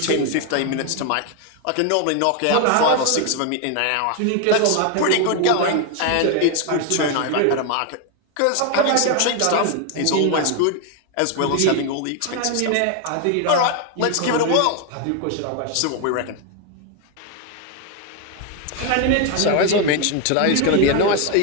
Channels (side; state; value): both; different; correlation 0.01